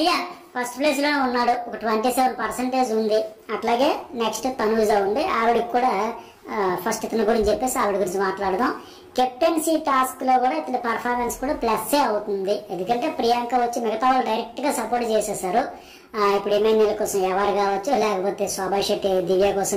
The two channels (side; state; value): both; identical; correlation 1.00